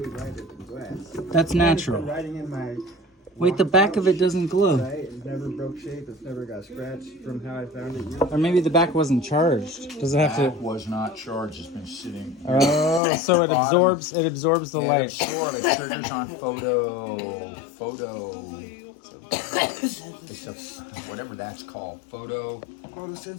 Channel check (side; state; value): right; drops out; at 13.0 s